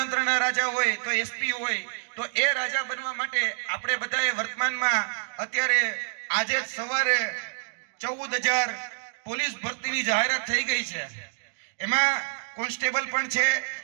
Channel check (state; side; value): silent; left; digital silence